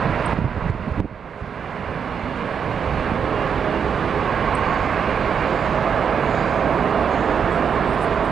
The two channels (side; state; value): left; quieter; 7.1 dB